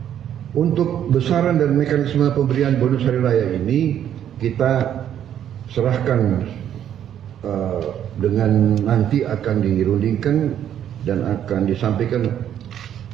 Untuk besaran dan mekanisme pemberian bonus hari raya ini kita serahkan dengan nanti akan dirundingkan dan akan disampaikan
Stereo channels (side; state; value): left; quieter; 10.1 dB